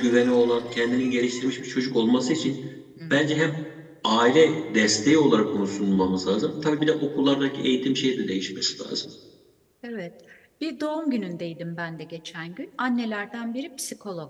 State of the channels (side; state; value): both; identical; correlation 1.00